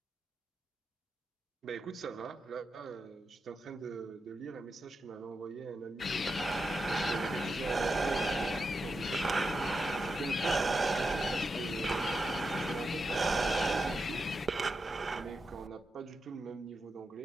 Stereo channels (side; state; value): both; normal; correlation 0.87